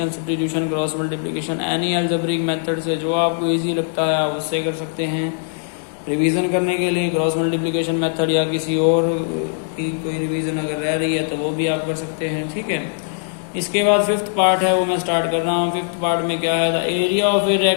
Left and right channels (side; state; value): right; silent; 65 dB below the other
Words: substitution, cross multiplication, any algebraic method से जो आपको इजी लगता है आप उससे कर सकते हैं। रिवीजन करने के लिए क्रॉस मल्टीप्लिकेशन मेथड या किसी और की कोई रिवीजन अगर रह रही है तो वो भी आप कर सकते हैं, ठीक है। इसके बाद फिफ्थ पार्ट है वो मैं स्टार्ट कर रहा हूँ। फिफ्थ पार्ट में क्या है, the area of A